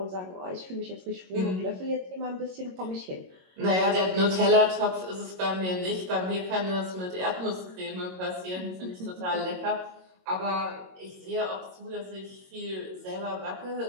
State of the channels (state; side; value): late; left; 22 ms